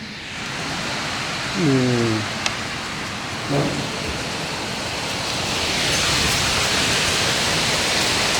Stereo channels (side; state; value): both; identical; correlation 1.00